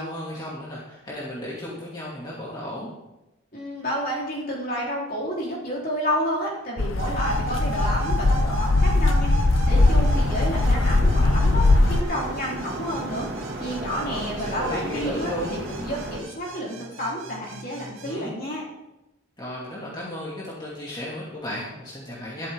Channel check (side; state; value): both; normal; correlation 0.68